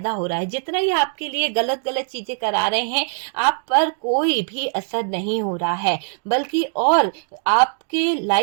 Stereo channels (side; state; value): left; silent; 65 dB below the other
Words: हो रहा है। जितना ये आपके लिए गलत गलत चीजें करा रहे हैं, आप पर कोई भी असर नहीं हो रहा है, बल्कि और आपके